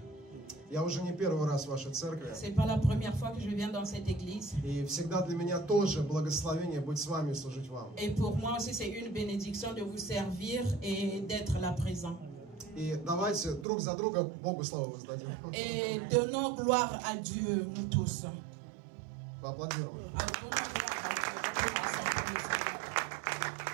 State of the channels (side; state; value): left; drops out; at 13.7 s